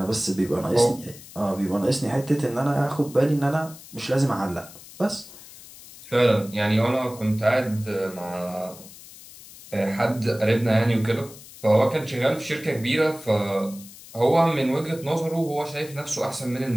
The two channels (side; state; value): left; noise; hiss, 18 dB below the sound